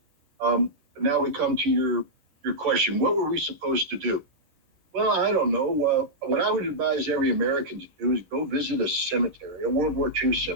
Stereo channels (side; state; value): left; late; 10 ms